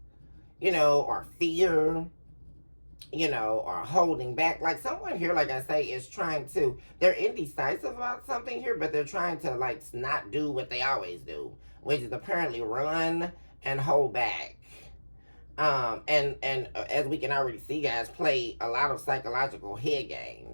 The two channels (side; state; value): both; inverted; correlation -1.00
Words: you know, or fear, you know, or holding back. Like, someone here, like I say, is trying to, they're indecisive about something here, but they're trying to, like, not do what they always do, which is apparently run and hold back. And as we can already see, guys, play a lot of psychological head